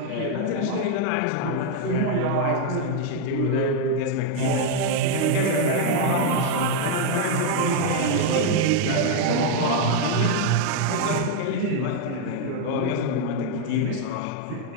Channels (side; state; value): both; different; correlation 0.00